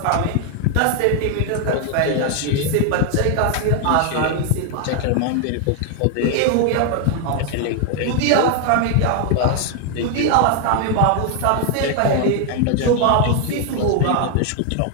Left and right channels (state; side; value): different; both; correlation 0.00